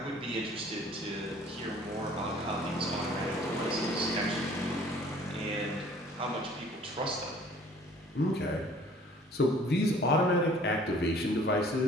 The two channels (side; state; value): both; normal; correlation 0.53